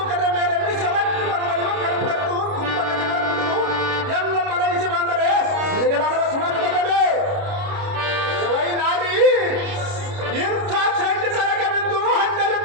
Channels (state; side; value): late; left; 29 ms